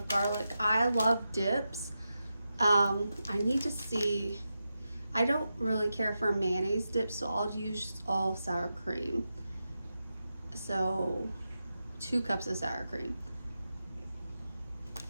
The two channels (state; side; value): inverted; both; correlation -0.90